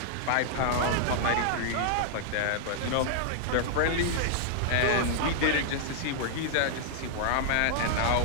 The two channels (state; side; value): different; both; correlation -0.01